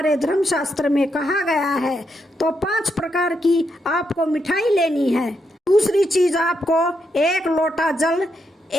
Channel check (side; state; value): both; normal; correlation 0.81